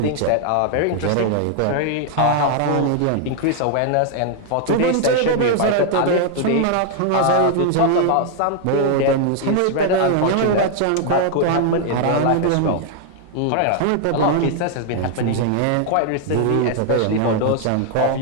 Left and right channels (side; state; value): both; different; correlation 0.00